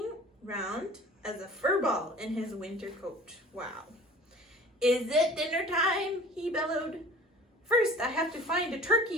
round as a fur ball in his winter coat. Wow. Is it dinner time? He bellowed. First, I have to find a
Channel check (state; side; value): normal; both; correlation 0.45